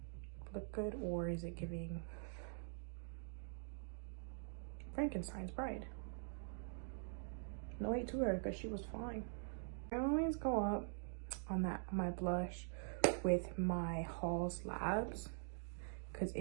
look good, or is it giving Frankenstein's bride? No hate to her, because she was fine. I always go up on my blush with my Halls Labs, because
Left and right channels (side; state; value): left; silent; digital silence